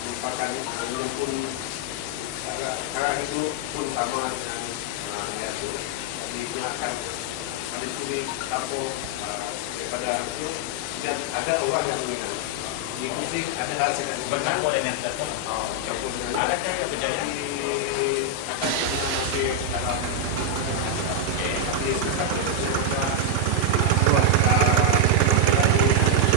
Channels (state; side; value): different; both; correlation 0.00